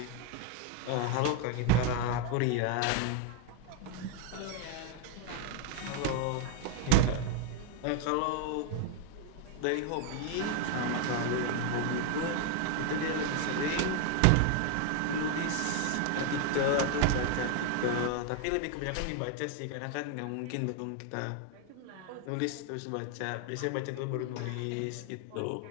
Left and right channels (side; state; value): both; different; correlation 0.01